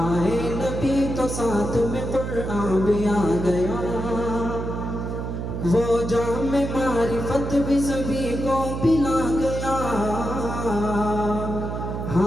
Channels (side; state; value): right; noise; hum, 4 dB below the sound